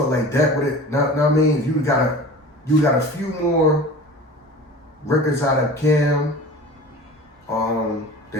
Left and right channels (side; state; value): both; normal; correlation 0.39